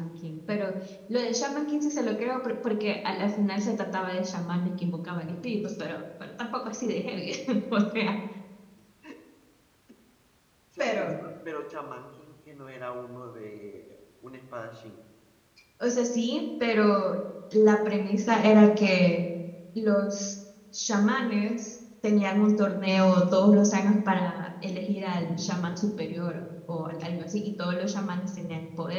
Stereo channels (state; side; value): identical; both; correlation 1.00